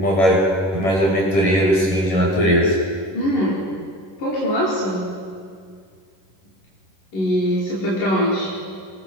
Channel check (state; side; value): late; right; 11 ms